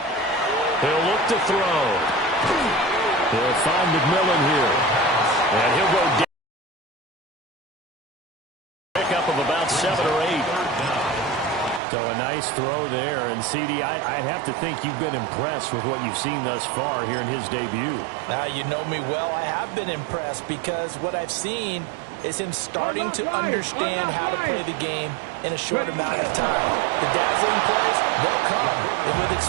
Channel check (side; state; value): left; drops out; at 11.8 s